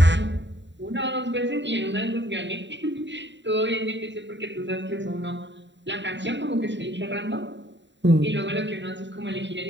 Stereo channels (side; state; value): left; late; 0.52 ms